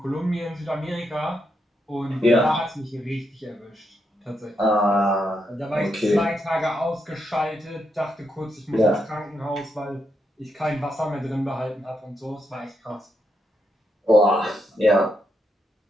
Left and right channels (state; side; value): normal; both; correlation 0.81